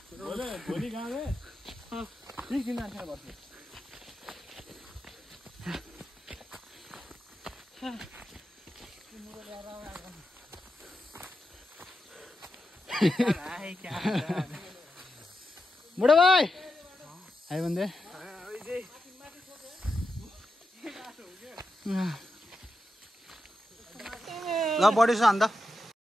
भोलि गाउँले 20 दिन जान्छ बस्नु बुढो भाइ आयो भने ल बढी छ अन्त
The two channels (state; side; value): normal; both; correlation 0.88